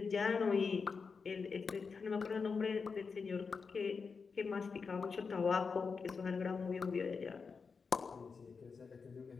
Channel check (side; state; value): right; quieter; 5.2 dB